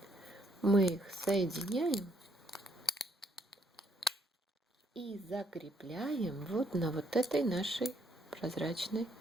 Мы их соединяем и закрепляем вот на вот этой нашей прозрачной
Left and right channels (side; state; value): both; normal; correlation 0.70